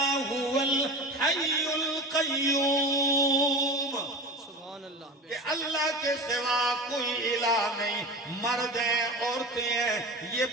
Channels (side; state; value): both; normal; correlation 0.30